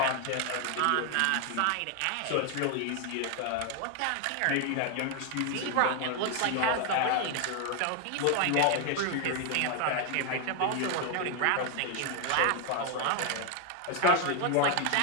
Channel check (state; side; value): different; both; correlation 0.01